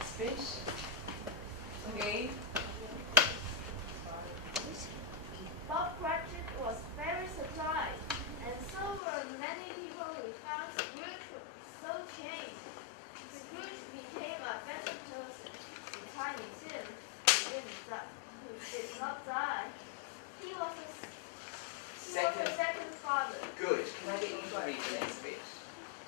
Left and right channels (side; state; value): right; drops out; at 9.0 s